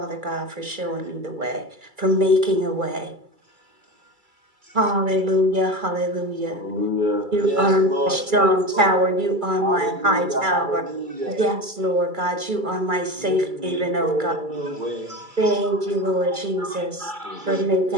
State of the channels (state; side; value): late; left; 2.3 ms